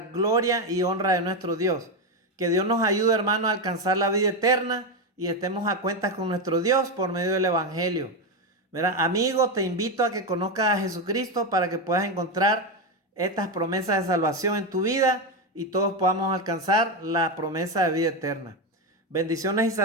y honra de nuestro Dios. Que Dios nos ayude, hermano, a alcanzar la vida eterna y estemos a cuentas con nuestro Dios por medio del Evangelio. ¿Verdad? Amigo, te invito a que conozcas a Jesucristo para que puedas encontrar estas promesas de salvación en tu vida y todos podamos alcanzar la promesa de vida eterna. Bendiciones y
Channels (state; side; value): normal; both; correlation 0.11